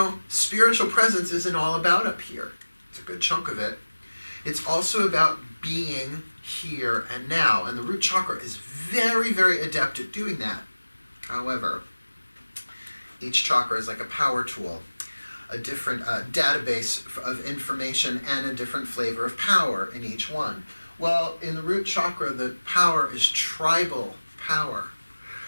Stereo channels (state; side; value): inverted; both; correlation -1.00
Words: spiritual presence isn't all about up here. It's a good chunk of it. It's also about being here and now. And the root chakra is very, very adept at doing that. However, each chakra is like a power tool, a different database of information and a different flavor of power in each one. Well, in the root chakra, the power is tribal power.